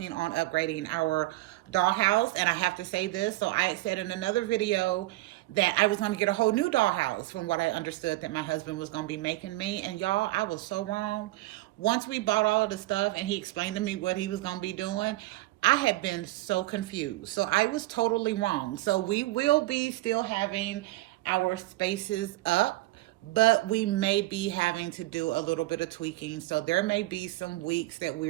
on upgrading our dollhouse. And I have to say this. So I said in another video that I was going to get a whole new dollhouse from what I understood that my husband was going to be making me. And y'all, I was so wrong. Once we bought all of the stuff and he explained to me what he was going to be doing, I had been so confused. So I was totally wrong. So we will be still having our spaces up, but we may be having to do a little bit of tweaking. So there may be some weeks that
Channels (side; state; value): left; quieter; 18.8 dB